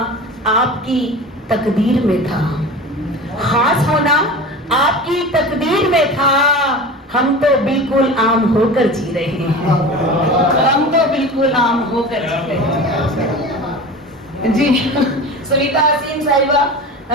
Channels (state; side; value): normal; both; correlation 0.33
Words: آپ کی تقدیر میں تھا، خاص ہونا آپ کی تقدیر میں تھا، ہم تو بالکل عام ہو کر جی رہے ہیں، ہم تو بالکل عام ہو کر جی رہے ہیں۔ جی سویتا حسین صاحبہ